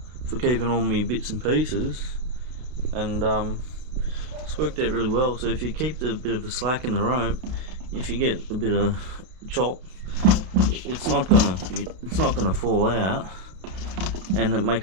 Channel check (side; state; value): left; late; 32 ms